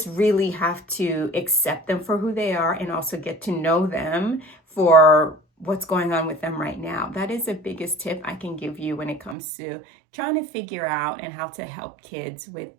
really have to accept them for who they are, and also get to know them for what's going on with them right now. That is the biggest tip I can give you when it comes to trying to figure out and how to help kids with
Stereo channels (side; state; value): left; drops out; at 9.3 s